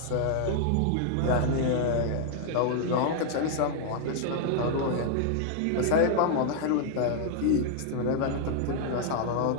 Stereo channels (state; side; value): different; both; correlation 0.00